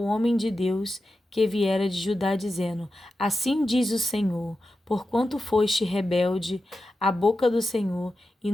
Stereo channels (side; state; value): both; normal; correlation 0.91